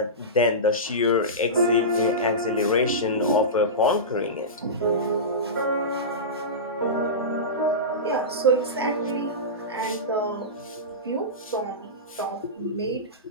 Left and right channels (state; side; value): normal; both; correlation -0.18